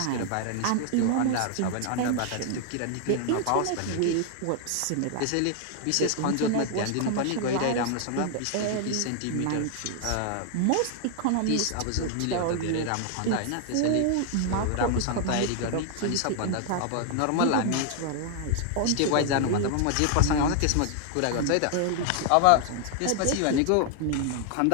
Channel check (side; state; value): both; different; correlation 0.00